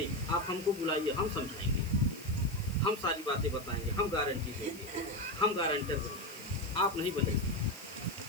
आप हमको बुलाइए, हम समझाएंगे, हम सारी बातें बताएंगे, हम गारंटी देंगे, हम गारंटर बनेंगे, आप नहीं बनेंगे।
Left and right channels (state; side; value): noise; left; hiss, 17 dB below the sound